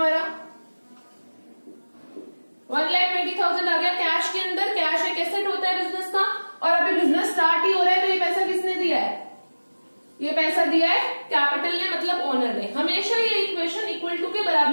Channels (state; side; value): inverted; both; correlation -1.00